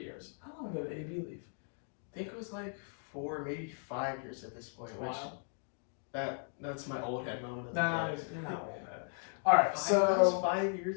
years. How long ago did AB leave? I think it was 4, maybe 5 years at this point. Wow. Which that's my old head moment. Nah, you're not old head. All right, that was 5 years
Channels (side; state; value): right; silent; 53 dB below the other